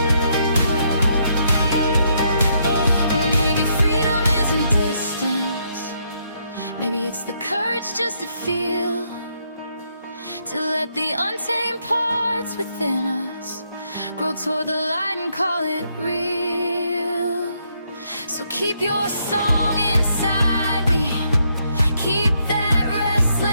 Maybe freedom isn't distance, maybe it's the courage just to feel, to let the untamed parts within us grow toward the light and call it real. So keep your song inside me, keep that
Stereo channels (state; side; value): inverted; both; correlation -0.74